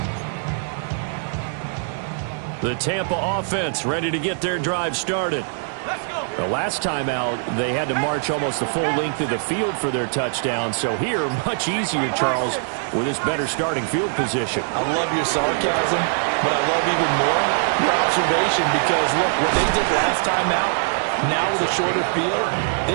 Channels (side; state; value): left; silent; 64 dB below the other